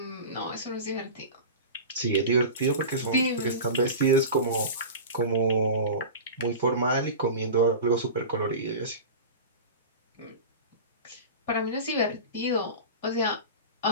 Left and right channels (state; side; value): inverted; both; correlation -0.30